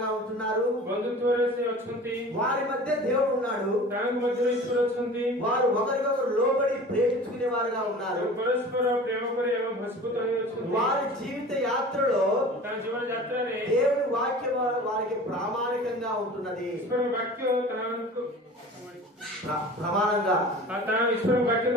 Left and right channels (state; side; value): normal; both; correlation 0.40